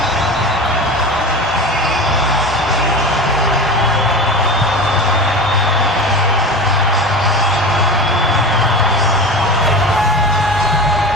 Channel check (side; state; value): both; normal; correlation 0.30